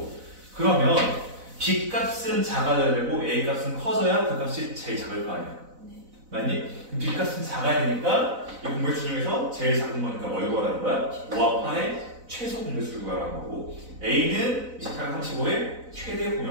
그러면 B 값은 작아져야 되고 A 값은 커져야 그 값이 제일 작을 거 아니야. 네. 맞니? 그럼 B 값은 작아야 되니까 이 공배수 중에서 제일 작은 거니까 뭘 구하라는 거야? 5와 8의 최소 공배수를 구하라는 거고 A는 28, 35의 최대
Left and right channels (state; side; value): late; left; 4.0 ms